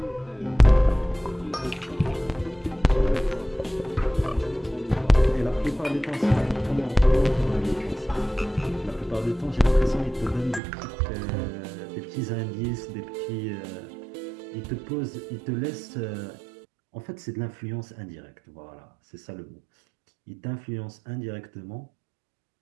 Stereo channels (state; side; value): drops out; left; at 10.6 s